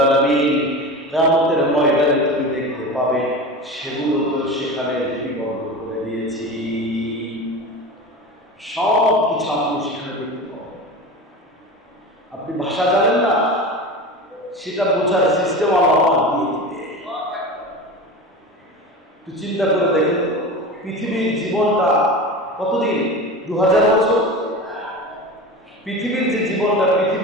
আলামিন কিয়ামতের ময়দানে তুমি দেখতে পাবে সেগুলো তো সেখানে লিপিবদ্ধ করে দিয়েছি। সব কিছু আপনি সেখানে দেখতে পাবেন। আপনি ভাষা জানেন না, সেটা বোঝার সিস্টেম আল্লাহ দিয়ে দিবে। একটু চিন্তা করে দেখেন, পৃথিবীর জীবনটা কতদিন? 2000 বছর। পৃথিবীর যে জীবনটা,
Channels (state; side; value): normal; both; correlation 0.30